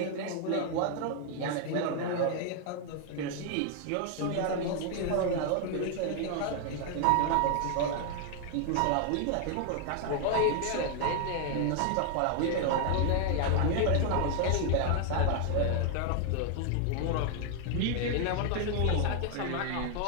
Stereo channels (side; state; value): both; different; correlation 0.00